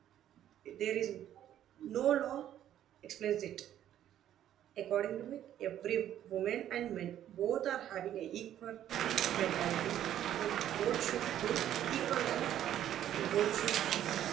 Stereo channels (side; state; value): left; quieter; 11.3 dB